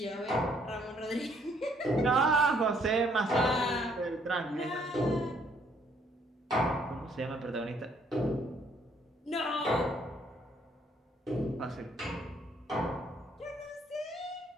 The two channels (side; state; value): both; normal; correlation 0.66